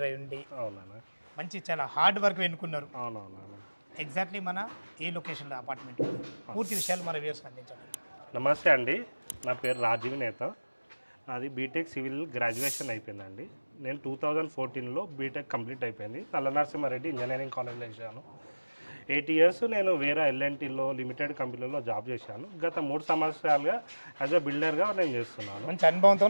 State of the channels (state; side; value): inverted; both; correlation -1.00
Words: అయి ఉండి అవునా? మంచి చాలా హార్డ్ వర్క్ ఎన్నుకున్నారు. అవునవునా? ఎగ్జాక్ట్లీ మన ఏ లొకేషన్లో అపార్ట్మెంట్ పూర్తి విషయాలు మన వ్యూవర్స్కి అందించండి. నమస్తే అండి, నా పేరు రాజీవ్ నేత. అది బీటెక్ సివిల్ గ్రాడ్యుయేషన్ అయిపోయిందండి. నేను 2014లో బీటెక్ కంప్లీట్ అయిపోయింది. నల్లనరసింహారెడ్డి ఇంజనీరింగ్ కాలేజ్లో చేశాను. 8 ఇయర్స్ నేను వేరే L&Tలో లిమిటెడ్ కంపెనీలో జాబ్ చేశాను. గత 3 సంవత్సరాలుగా యాజ్ అ బిల్డర్గా నేను చేస్తున్నాను. మంచి